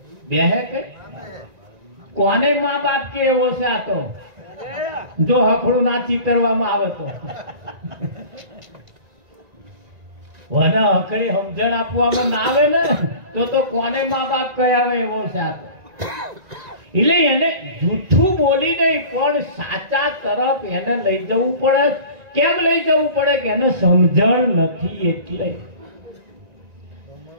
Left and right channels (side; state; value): left; late; 1.9 ms